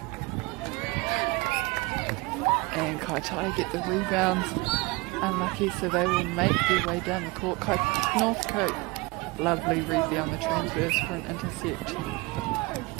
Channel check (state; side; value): quieter; left; 24.7 dB